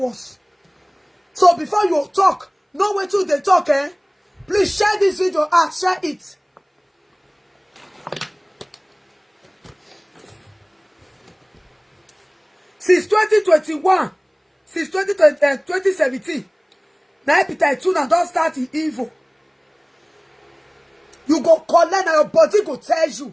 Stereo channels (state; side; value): identical; both; correlation 1.00